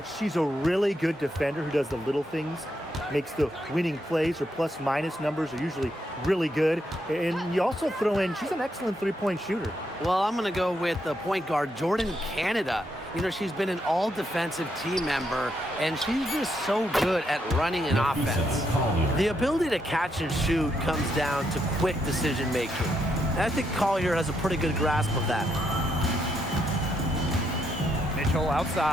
she's a really good defender who does the little things, makes the winning plays. Her plus-minus numbers are usually really good. And you also throw in, she's an excellent three-point shooter. Well, I'm going to go with the point guard, Jordan Canada. You know, she's been an all-defensive team member, and she's just so good at running an offense. The ability to catch and shoot comes down to quick decision-making. And I think Collier has a pretty good grasp of that. Mitchell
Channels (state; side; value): normal; both; correlation 0.78